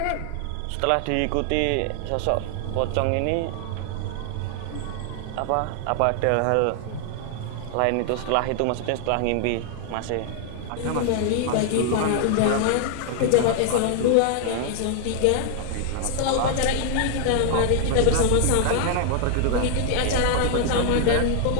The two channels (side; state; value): both; different; correlation 0.00